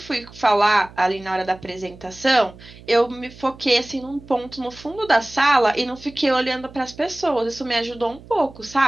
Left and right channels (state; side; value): noise; right; hum, 20 dB below the sound